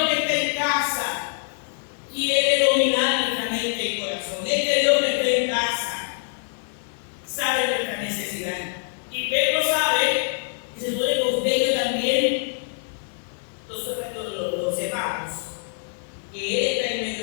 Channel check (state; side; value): silent; right; digital silence